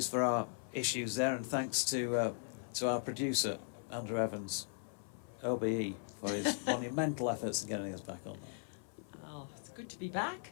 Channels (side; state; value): right; silent; 52 dB below the other